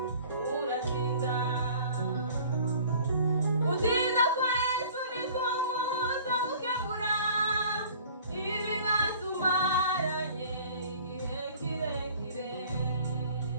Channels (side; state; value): both; inverted; correlation -0.49